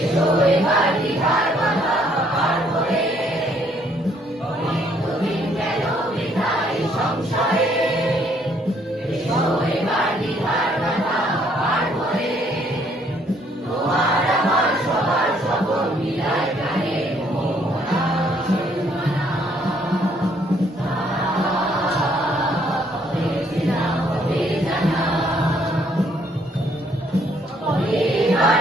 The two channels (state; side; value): normal; both; correlation 0.66